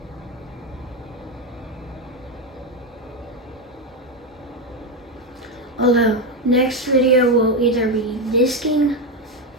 Although next video will either be disking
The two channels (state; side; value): normal; both; correlation 0.10